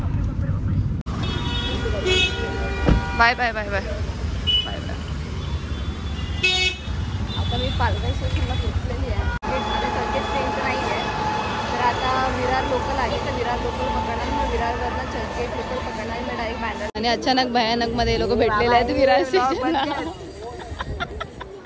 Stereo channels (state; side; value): identical; both; correlation 1.00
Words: Bye bye bye bye bye bye. आता मी पालघर स्टेशनला पोहोचलेली आहे. ट्रेन तर नाही आहे तर आता विरार लोकल आहे. तर विरार लोकल पकडणार. मग विरारवरनं चर्चगेट लोकल पकडणार. मी डायरेक्ट बँड्रा. आणि अचानक भयानक मध्ये लोक भेटलेले आहेत विरार स्टेशनला.